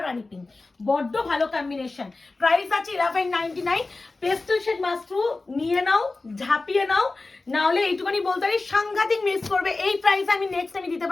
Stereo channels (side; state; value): right; quieter; 3.4 dB